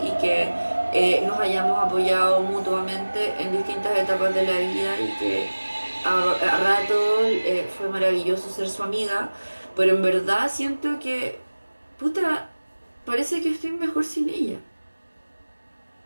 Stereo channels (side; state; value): both; inverted; correlation -1.00